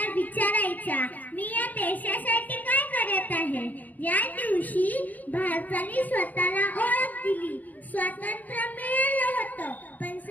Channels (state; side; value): late; right; 0.080 ms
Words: विचारायचा, मी या देशासाठी काय करत आहे. या दिवशी भारताने स्वतःला ओळख दिली. स्वातंत्र्य मिळालं होतं, पण